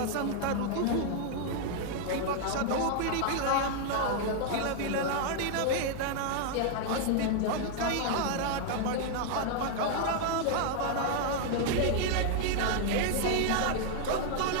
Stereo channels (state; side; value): different; both; correlation 0.00